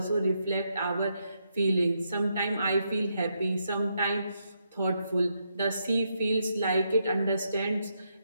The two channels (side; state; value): both; inverted; correlation -0.79